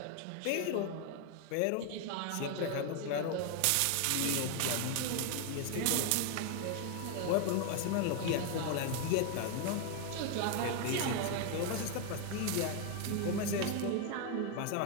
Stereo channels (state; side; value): different; both; correlation 0.01